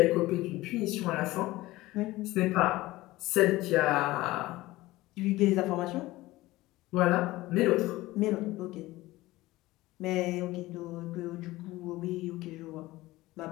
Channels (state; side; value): quieter; right; 18.4 dB